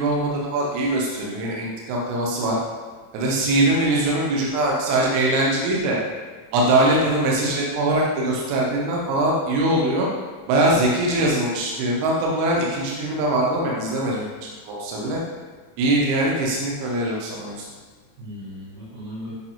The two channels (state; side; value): late; left; 27 ms